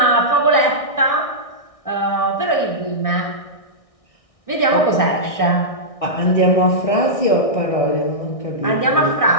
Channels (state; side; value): late; right; 1.6 ms